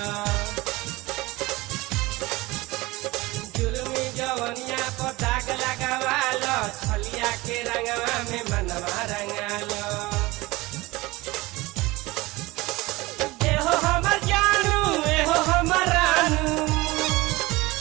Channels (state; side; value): quieter; left; 21.2 dB